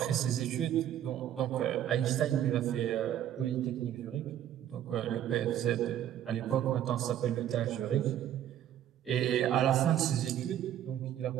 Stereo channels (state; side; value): quieter; left; 11.0 dB